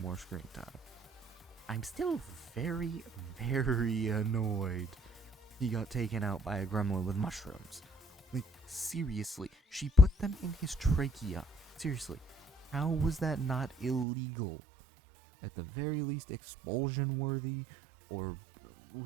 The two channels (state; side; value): drops out; left; at 14.1 s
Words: more screen time. I'm still very, very annoyed he got taken out by a gremlin with mushrooms. Like, seriously, she put them in his trachea. Seriously, how was that not illegal? At the very least, expulsion worthy, or